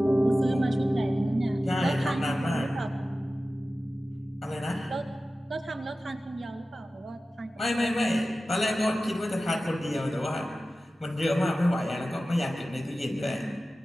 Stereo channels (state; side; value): normal; both; correlation 0.95